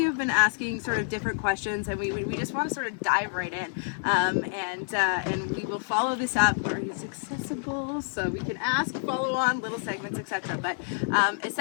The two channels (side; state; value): right; silent; 59 dB below the other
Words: have been asking sort of different questions, and we just want to sort of dive right in, and we will follow this up where it's accessible, so we can ask, follow on, little segments, etc. But